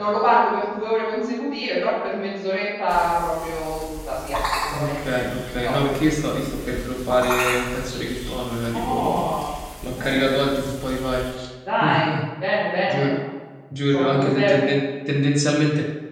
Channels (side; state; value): both; identical; correlation 1.00